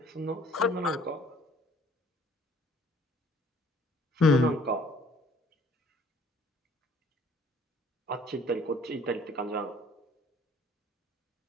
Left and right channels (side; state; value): both; normal; correlation 0.56